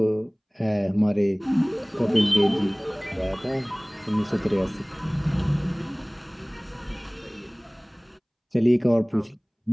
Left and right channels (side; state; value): both; identical; correlation 1.00